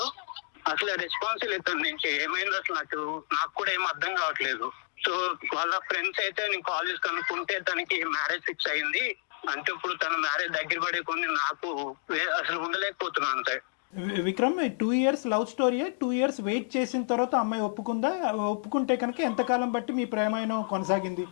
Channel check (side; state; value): right; silent; digital silence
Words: అసలు రెస్పాన్స్ లేదు తన నుంచి. ఏమైంది అసలు నాకు కూడా ఏం అర్థం కావట్లేదు. సో వాళ్ళ ఫ్రెండ్స్ అయితే నేను కాల్ చేసి కనుక్కుంటే తనకి మ్యారేజ్ ఫిక్స్ అయింది. అంటే ఇప్పుడు తన మ్యారేజ్ దగ్గర పడే కొన్ని నాకు అసలు ఉండలేకపోతున్నాను అంతే. Vikram, 2 years love story. 2 years wait చేసిన తర్వాత అమ్మాయి ఒప్పుకుందా? ఒప్పుకుంటే కనుక ఎంతకాలం బట్టి మీ ప్రేమాయణం కొనసాగింది,